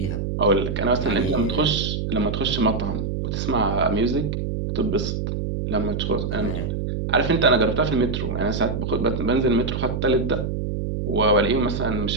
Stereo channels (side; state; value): right; noise; hum, 2 dB below the sound